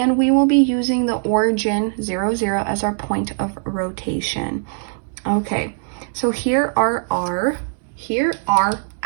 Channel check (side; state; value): left; silent; 66 dB below the other